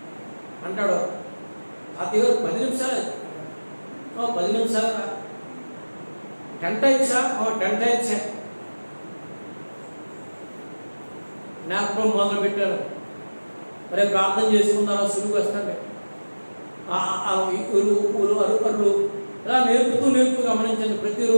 అంటాడు. తాతయ్య గారు 10 నిమిషాలు 10 నిమిషాలు 10 టైమ్స్ 10 టైమ్స్ నాకు మొదలు పెట్టారు. మరి ప్రార్థన చేసుకున్నారా, సులువు వస్తాండి అరుకర్లు ఇలా నేర్పుతూ గమనించండి.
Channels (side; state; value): both; inverted; correlation -1.00